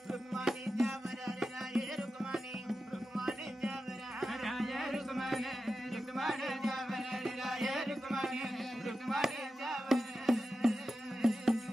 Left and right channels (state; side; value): normal; both; correlation 0.91